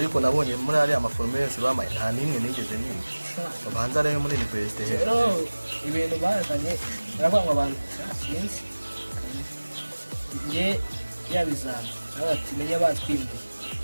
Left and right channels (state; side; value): inverted; both; correlation -1.00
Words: nabonye muri ari amaforumire yose bamaye nta nimwe nigeze niba babanza rero muri university rero ibintu bazanye barabanga abantu sinzi nge yabizana abati menye batwimbuye